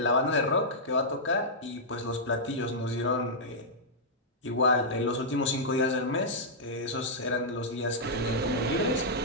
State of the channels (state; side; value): normal; both; correlation -0.10